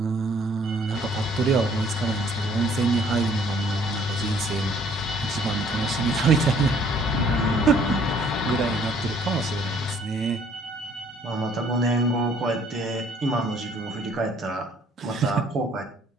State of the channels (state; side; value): normal; both; correlation 0.59